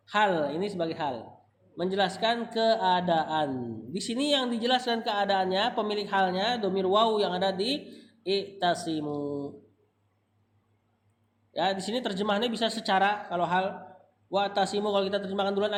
Hal, ini sebagai hal. Menjelaskan keadaan. Di sini yang dijelaskan keadaannya, pemilik halnya, domir waw yang ada di i'tasimu. Ya, di sini terjemahannya bisa secara kalau hal wa'tasimu kalau kita terjemahkan duluan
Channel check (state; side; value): identical; both; correlation 1.00